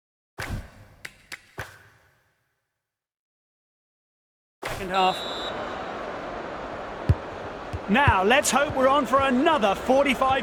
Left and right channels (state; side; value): identical; both; correlation 1.00